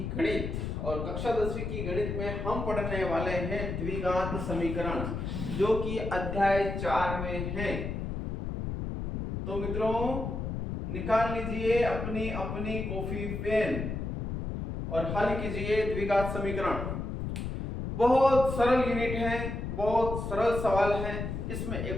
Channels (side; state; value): left; noise; rumble, 4 dB below the sound